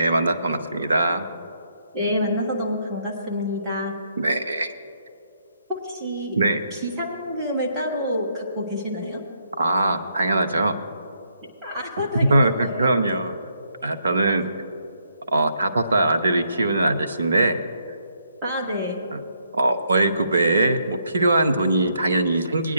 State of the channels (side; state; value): both; inverted; correlation -0.74